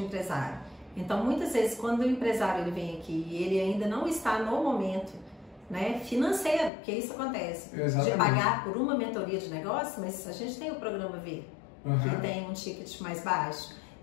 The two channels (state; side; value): drops out; right; at 6.7 s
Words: Então, muitas vezes, quando o empresário ele vem aqui e ele ainda não está no momento, né, financeiro, porque isso acontece, de pagar por uma mentoria de negócio, mas a gente tem o programa V, que tem um ticket mais baixo.